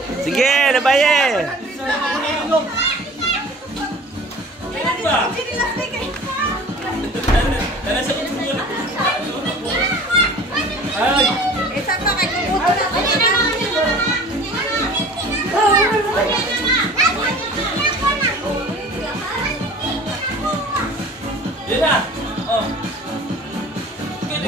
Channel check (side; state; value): both; normal; correlation 0.44